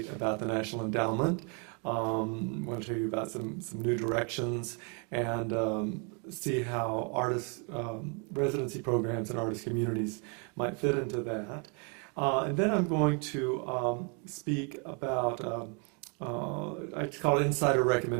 about the National Endowment. I want to tell you about some new directions and see how artist residency programs and artist communities might fit into that. And then I'm going to speak about I just call it insider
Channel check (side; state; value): left; quieter; 36.5 dB